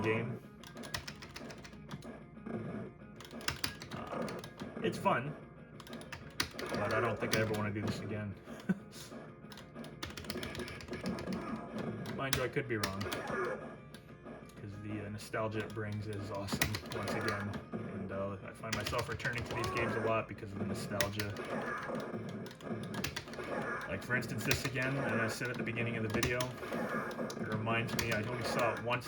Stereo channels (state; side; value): identical; both; correlation 1.00